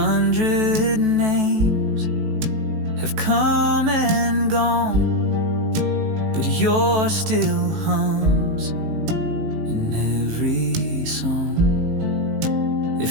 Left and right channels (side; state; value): left; late; 18 ms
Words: names have come and gone, but yours still hums in every song.